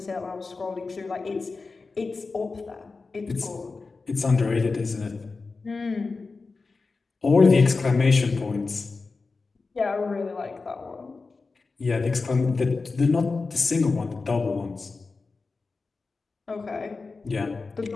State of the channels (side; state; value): right; quieter; 4.1 dB